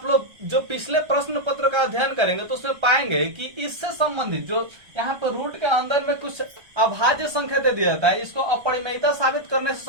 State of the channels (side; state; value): left; late; 1.3 ms